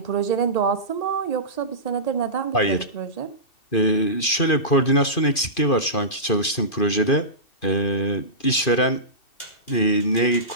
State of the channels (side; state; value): right; late; 2.5 ms